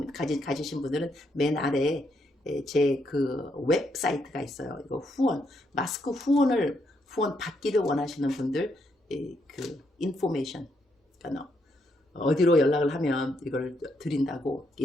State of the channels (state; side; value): normal; both; correlation 0.77